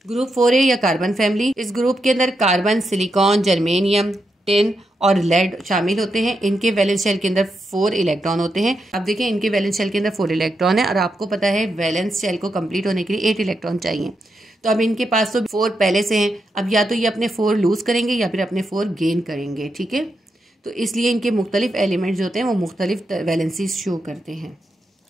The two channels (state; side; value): normal; both; correlation 0.84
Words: ग्रुप 4A या कार्बन फैमिली। इस ग्रुप के अंदर कार्बन, सिलिकॉन, जर्मेनियम, टिन और लेड शामिल होते हैं। इनके वैलेंस शेल के अंदर 4 इलेक्ट्रॉन होते हैं। अब देखिए इनके वैलेंस शेल के अंदर 4 इलेक्ट्रॉन है और आपको पता है वैलेंस शेल को कंप्लीट होने के लिए 8 इलेक्ट्रॉन चाहिए। तो अब इनके पास तो 4 पहले से हैं, अब या तो ये अपने 4 लूज करेंगे या फिर अपने 4 गेन करेंगे, ठीक है। तो इसलिए इनके मुख्तलिफ एलिमेंट्स जो होते हैं वो मुख्तलिफ वैलेंसीज शो करते हैं।